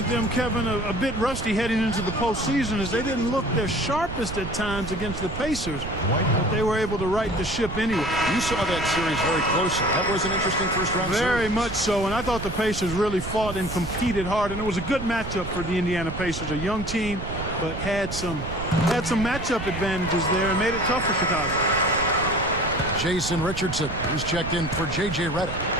them, Kevin, a bit rusty heading into the postseason as they didn't look their sharpest at times against the Pacers, but they were able to right the ship anyway. You saw that series very closely. That was an interesting first-round series. Very much so, and I thought the Pacers really fought and competed hard, and it was a good matchup for the Indiana Pacers, a young team, but had some matchup advantages there and made it tough for Chicago. Jason Richardson is checked in for J.J. Redick.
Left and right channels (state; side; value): noise; right; rumble, 7 dB below the sound